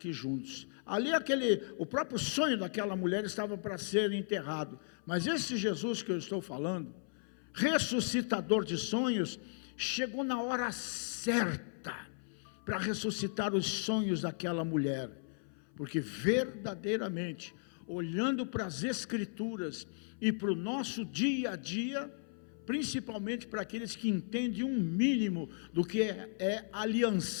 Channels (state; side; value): silent; right; 54 dB below the other